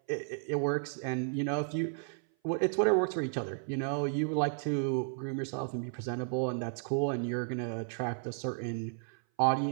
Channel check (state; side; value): silent; left; 56 dB below the other